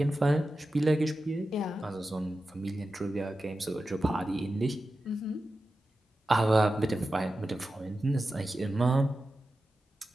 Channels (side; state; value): both; normal; correlation 0.92